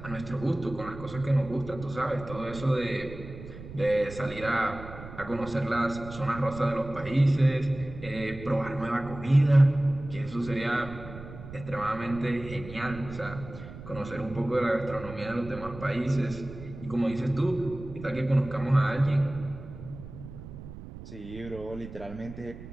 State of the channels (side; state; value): right; noise; rumble, 13 dB below the sound